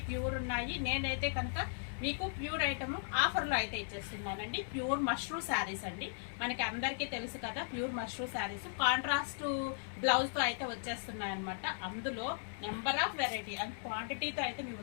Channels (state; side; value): silent; right; digital silence